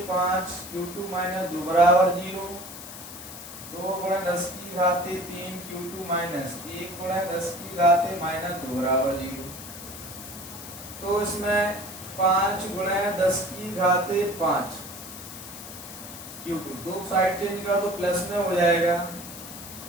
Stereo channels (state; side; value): noise; left; hiss, 13 dB below the sound